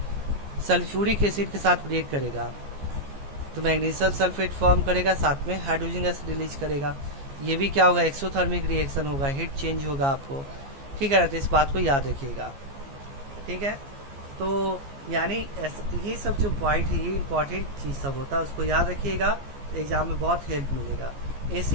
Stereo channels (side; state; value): left; late; 15 ms